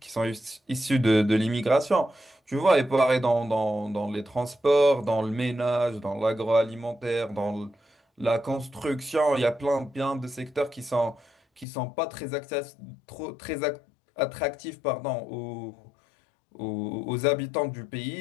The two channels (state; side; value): drops out; right; at 11.7 s